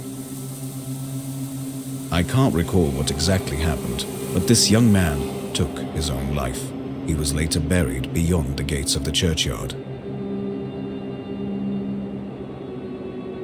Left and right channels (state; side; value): identical; both; correlation 1.00